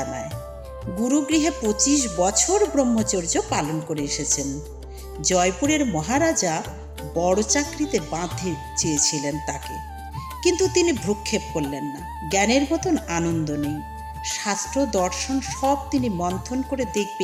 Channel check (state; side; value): identical; both; correlation 1.00